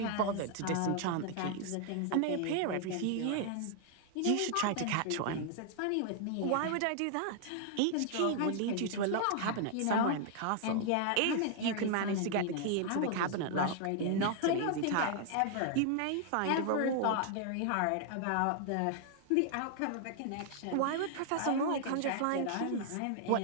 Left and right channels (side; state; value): both; different; correlation 0.00